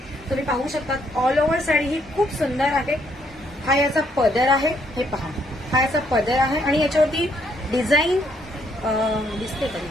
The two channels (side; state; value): both; normal; correlation 0.71